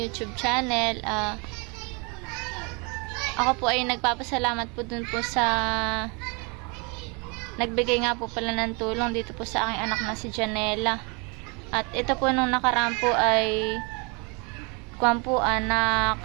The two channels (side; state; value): left; quieter; 31.9 dB